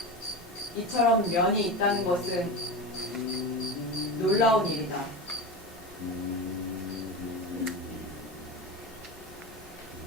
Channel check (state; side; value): normal; both; correlation 0.23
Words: 이처럼 면이 있다는 것은 놀라운 일이다.